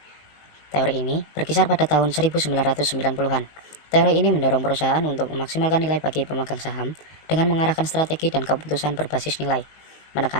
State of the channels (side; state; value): right; late; 20 ms